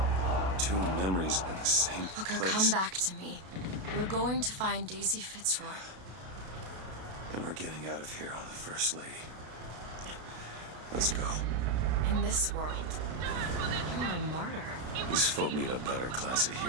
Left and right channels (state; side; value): late; left; 32 ms